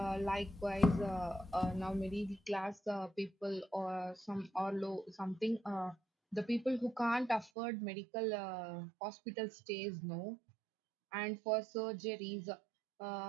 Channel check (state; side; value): drops out; left; at 7.5 s